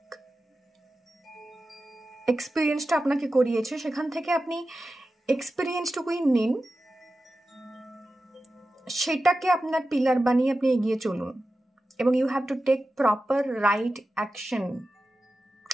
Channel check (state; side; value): normal; both; correlation 0.93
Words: এক্সপিরিয়েন্সটা আপনাকে করিয়েছে, সেখান থেকে আপনি এক্সপিরিয়েন্সটুকুই নিন, সেটাকে আপনার পিলার বানিয়ে আপনি এগিয়ে চলুন। এবং you have to take proper right action.